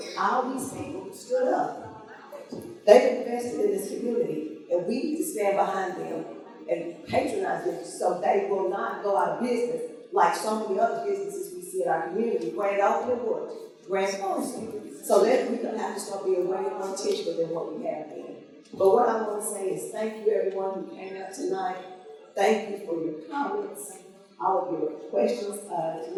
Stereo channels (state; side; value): identical; both; correlation 1.00